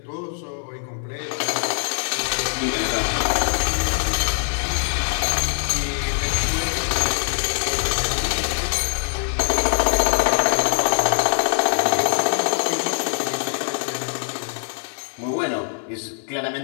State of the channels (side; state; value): right; silent; 59 dB below the other